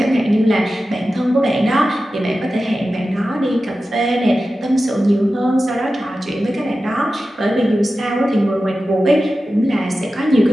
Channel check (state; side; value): normal; both; correlation 0.93